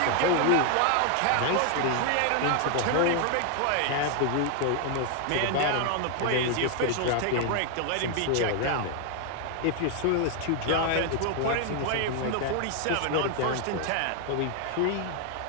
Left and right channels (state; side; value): different; both; correlation 0.00